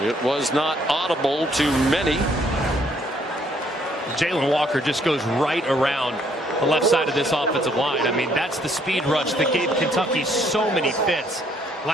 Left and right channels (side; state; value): both; normal; correlation 0.66